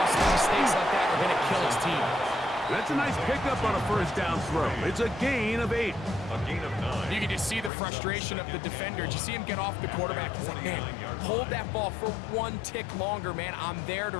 mistakes like that are going to kill his team. That's a nice pickup on a 1st down throw. It's a gain of 8. A gain of 9. You can just see the frustration of the defender. Did you see him get off the quarterback? He's like, man, hold that ball for 1 tick longer, man. I'm there to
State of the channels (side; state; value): right; drops out; at 7.7 s